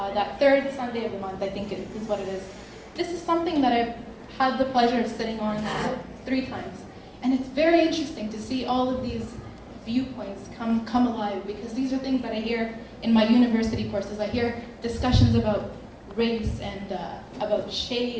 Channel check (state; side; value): identical; both; correlation 1.00